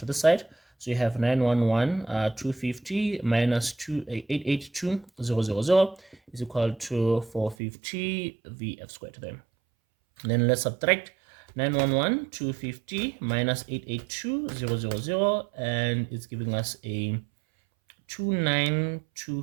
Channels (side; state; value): left; drops out; at 7.6 s